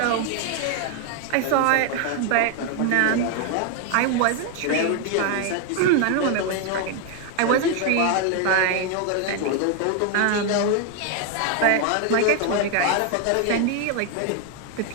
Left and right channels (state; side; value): different; both; correlation 0.01